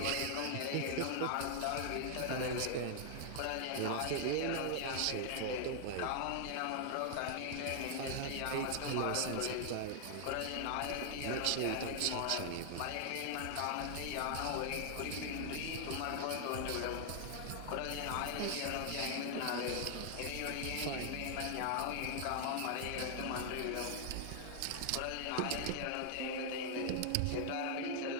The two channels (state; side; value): different; both; correlation 0.00